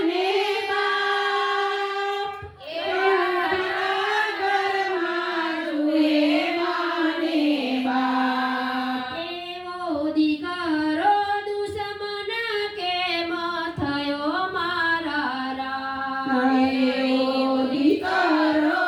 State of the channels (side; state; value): both; identical; correlation 1.00